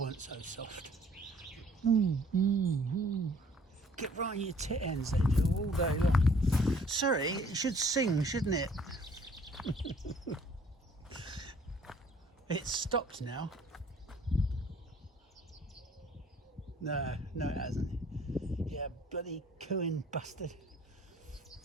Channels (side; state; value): both; normal; correlation 0.57